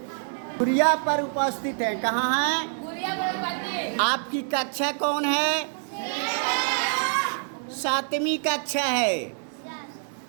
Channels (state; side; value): silent; left; 61 dB below the other